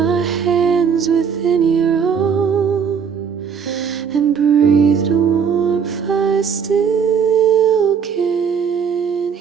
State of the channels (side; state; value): left; quieter; 6.8 dB